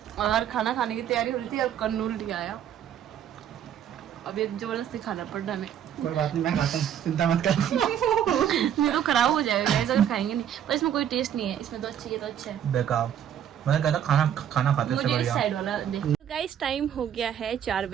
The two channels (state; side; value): quieter; left; 9.7 dB